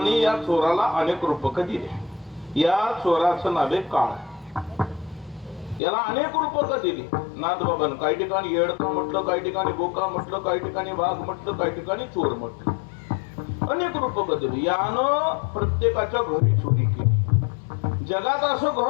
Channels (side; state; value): right; drops out; at 5.8 s